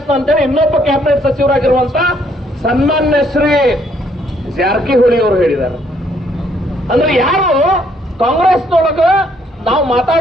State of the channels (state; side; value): normal; both; correlation 0.68